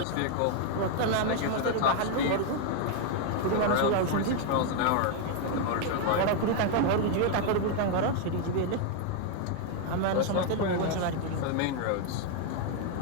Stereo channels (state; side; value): different; both; correlation 0.00